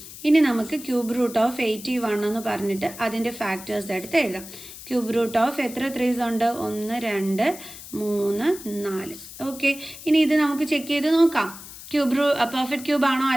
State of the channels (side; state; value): left; noise; hiss, 14 dB below the sound